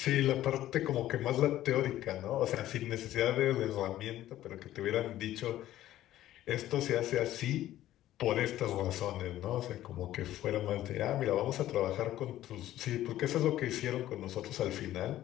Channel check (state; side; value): quieter; right; 13.7 dB